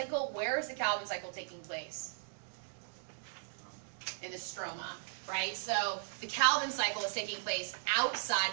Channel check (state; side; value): silent; left; 53 dB below the other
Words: where is the Calvin cycle taking place? In the stroma, right? So the Calvin cycle is taking place